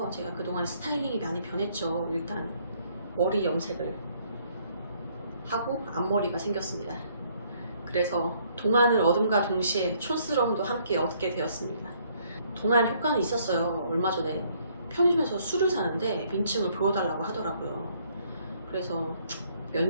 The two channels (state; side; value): inverted; both; correlation -0.66